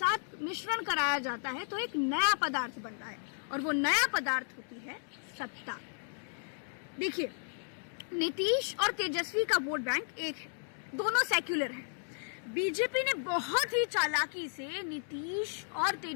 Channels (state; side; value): silent; right; digital silence